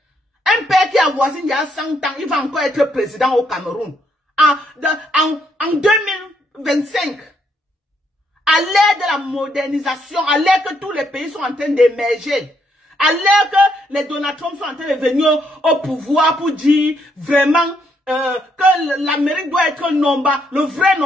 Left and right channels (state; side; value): normal; both; correlation 0.74